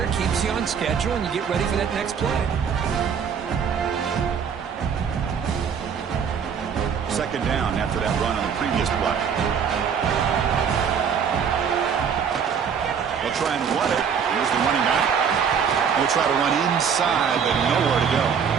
Keeps you on schedule, and you get ready for that next play. 2nd down after that run on the previous play. They'll try and run it. Here's the running back. They'll try to run inside, but nowhere to go.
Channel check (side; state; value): left; quieter; 7.0 dB